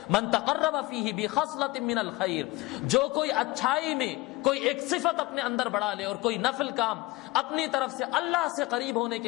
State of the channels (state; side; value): quieter; right; 20.6 dB